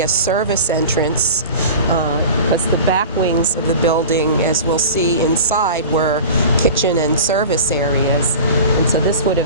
a service entrance, because the back wings of the building, as we'll see inside, were kitchen and service areas. And so this would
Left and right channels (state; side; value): inverted; both; correlation -0.35